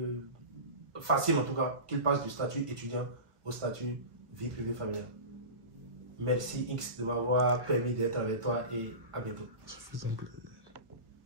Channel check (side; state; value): left; late; 1.1 ms